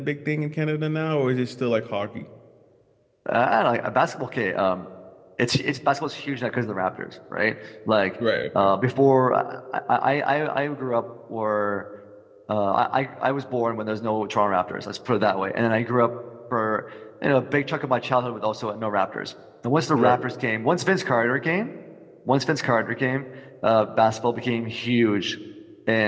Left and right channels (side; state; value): both; identical; correlation 1.00